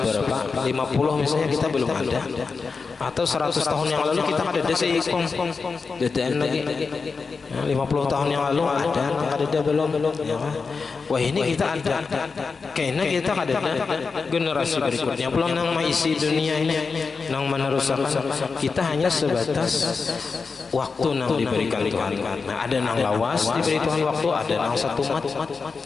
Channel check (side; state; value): right; quieter; 4.8 dB